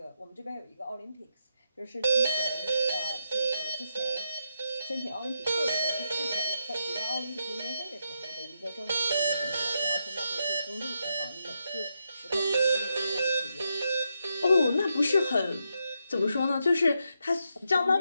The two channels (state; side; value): inverted; both; correlation -0.83